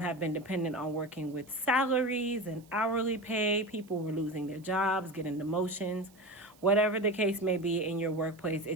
been dependent on working with salaries and hourly pay. People were losing their jobs, getting demotions, whatever the case may be in your workplace.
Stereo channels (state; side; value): noise; right; hiss, 28 dB below the sound